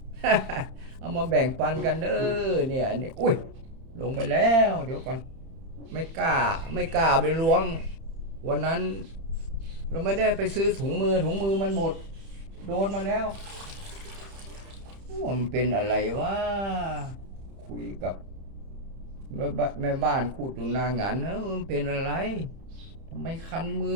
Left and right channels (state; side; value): late; left; 31 ms